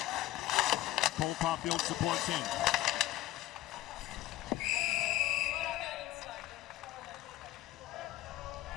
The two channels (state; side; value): quieter; right; 15.1 dB